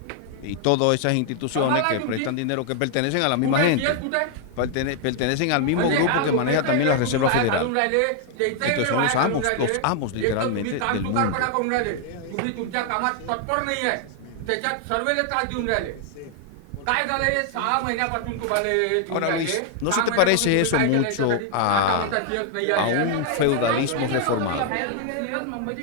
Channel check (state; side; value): different; both; correlation 0.00